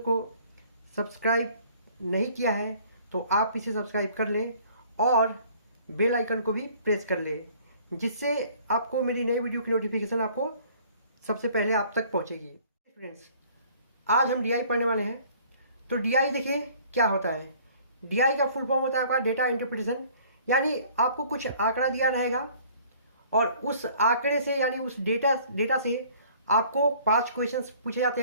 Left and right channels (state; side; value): inverted; both; correlation -0.54